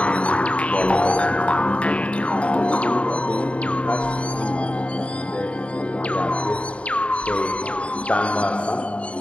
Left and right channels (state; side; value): late; right; 0.062 ms